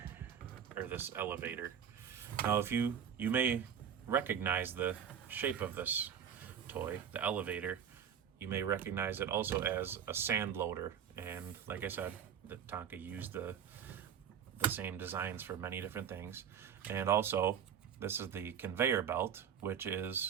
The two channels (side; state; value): left; quieter; 8.4 dB